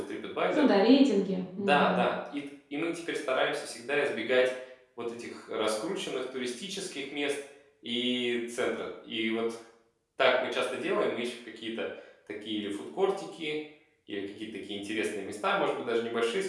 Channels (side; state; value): both; identical; correlation 1.00